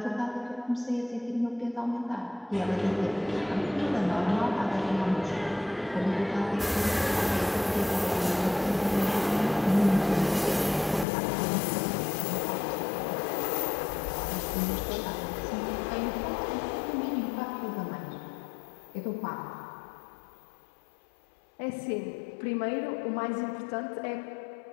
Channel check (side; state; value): right; drops out; at 11.1 s